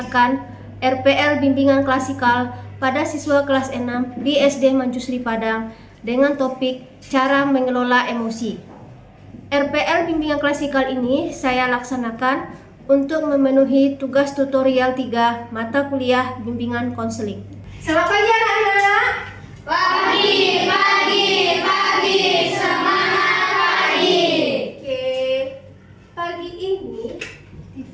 RPL Bimbingan Klasikal pada siswa kelas 6 di SD Manjusri Padang dengan topik cara mengelola emosi. RPL Bimbingan Klasikal ini saya laksanakan untuk memenuhi tugas tutorial 3 mata kuliah bimbingan konseling. Selamat pagi anak-anak. Pagi, semangat pagi. Oke, pagi ini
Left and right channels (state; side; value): identical; both; correlation 1.00